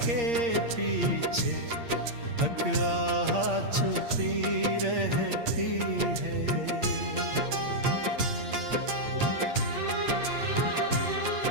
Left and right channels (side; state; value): left; late; 8.6 ms